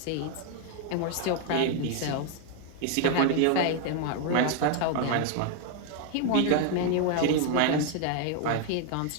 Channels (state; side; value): different; both; correlation 0.00